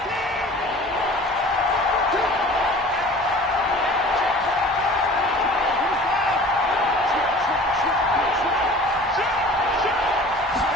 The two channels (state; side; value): normal; both; correlation 0.44